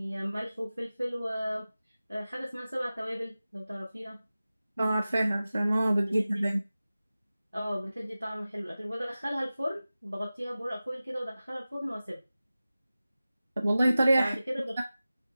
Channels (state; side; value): inverted; both; correlation -0.96